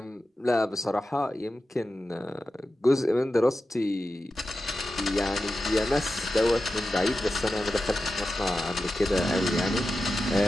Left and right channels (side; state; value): both; normal; correlation 0.92